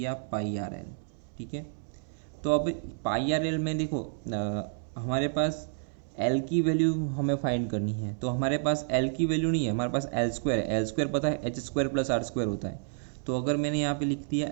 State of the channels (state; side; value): silent; left; 58 dB below the other